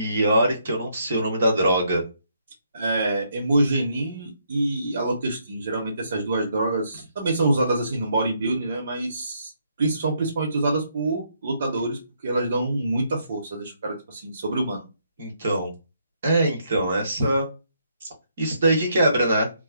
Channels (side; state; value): both; inverted; correlation -0.73